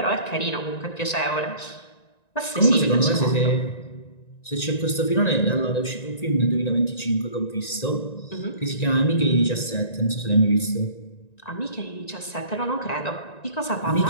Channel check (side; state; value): right; late; 1.9 ms